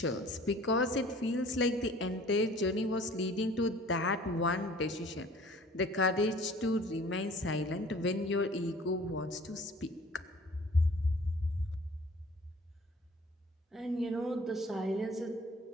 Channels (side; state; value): both; normal; correlation 0.50